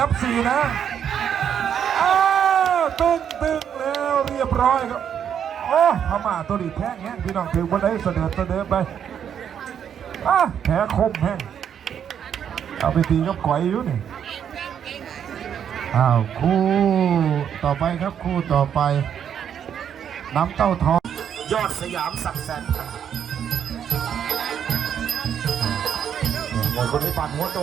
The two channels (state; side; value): quieter; left; 8.6 dB